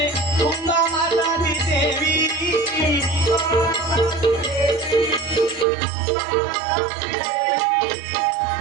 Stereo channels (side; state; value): left; drops out; at 5.7 s